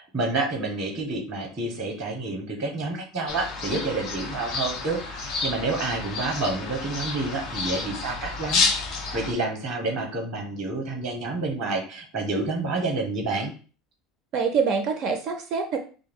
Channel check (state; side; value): normal; both; correlation 0.31